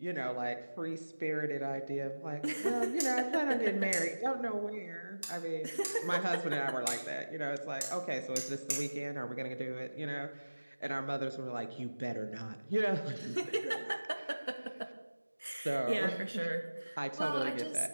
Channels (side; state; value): both; inverted; correlation -1.00